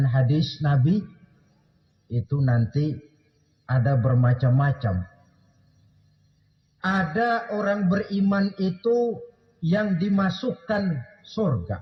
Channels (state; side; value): identical; both; correlation 1.00